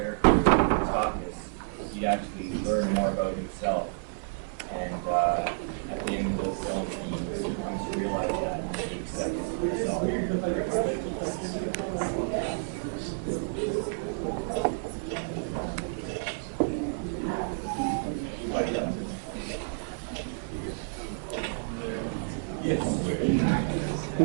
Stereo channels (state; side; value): silent; left; 58 dB below the other